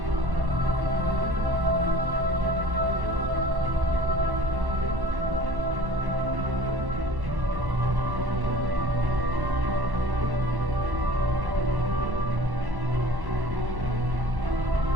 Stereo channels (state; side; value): late; left; 1.1 ms